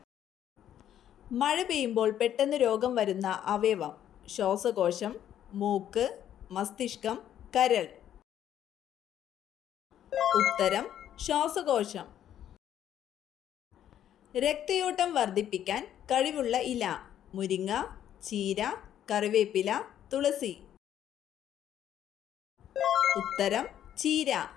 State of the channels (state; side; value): quieter; right; 10.7 dB